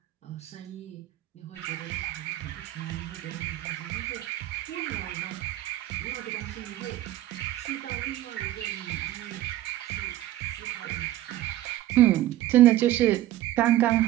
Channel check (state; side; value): quieter; left; 14.5 dB